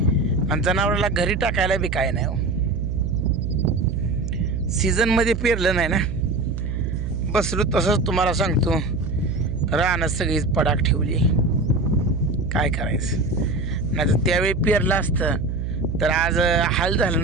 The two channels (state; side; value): noise; right; hum, 4 dB below the sound